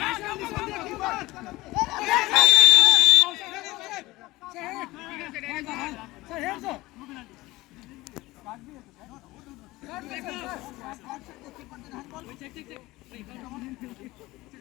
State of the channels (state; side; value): quieter; right; 19.5 dB